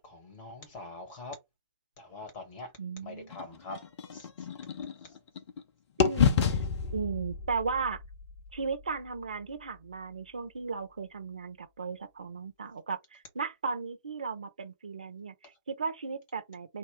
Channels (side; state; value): both; inverted; correlation -0.48